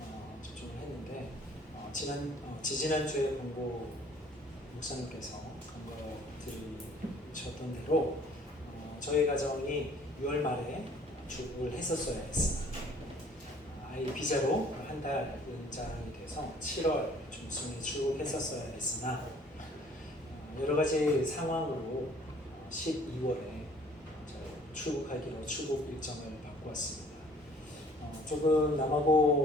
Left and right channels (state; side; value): normal; both; correlation 0.55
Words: 접종을 했는데 지지난주에 본고 목사님께서 간거 들으셨던 대로 저희 가정이 6월 말에 출국을 했었어야 했습니다. 아이 비자로 한 달 연장이 돼서 7월 중순에 출국했었어야 했으나 여러 가지 상황으로 12월에 출국하기로 출국 일정을 바꾸었습니다. 조금